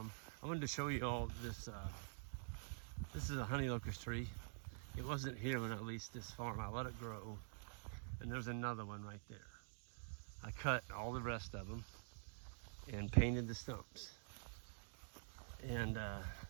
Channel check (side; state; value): left; silent; digital silence